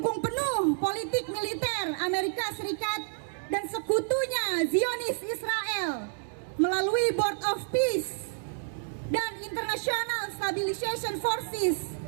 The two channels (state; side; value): silent; left; 58 dB below the other